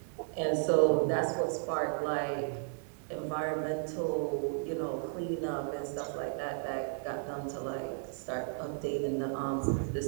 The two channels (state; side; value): silent; left; 55 dB below the other